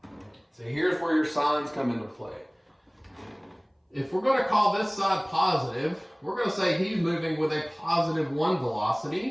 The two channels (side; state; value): both; identical; correlation 1.00